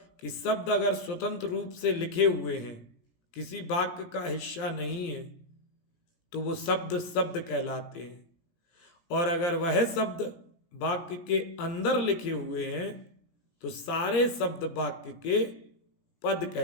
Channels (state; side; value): late; right; 17 ms